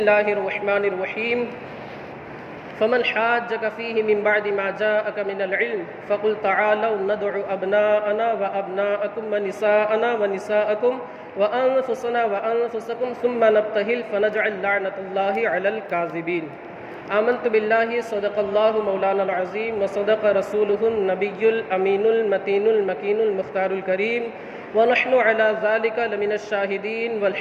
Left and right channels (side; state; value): both; identical; correlation 1.00